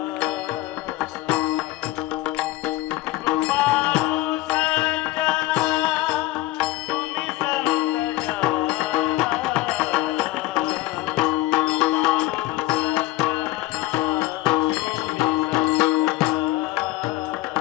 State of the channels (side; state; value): right; quieter; 17.5 dB